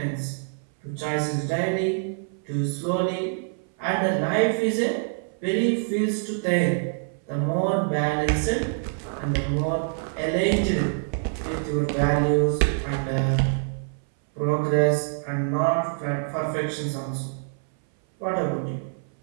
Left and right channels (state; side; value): silent; left; 60 dB below the other